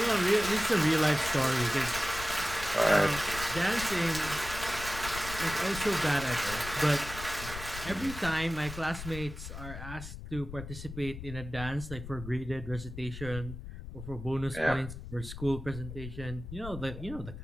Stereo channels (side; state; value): left; noise; rumble, 10 dB below the sound